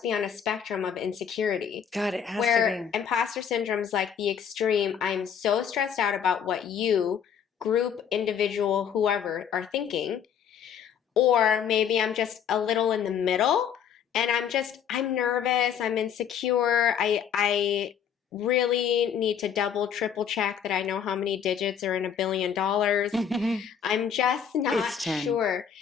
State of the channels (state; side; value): quieter; right; 8.1 dB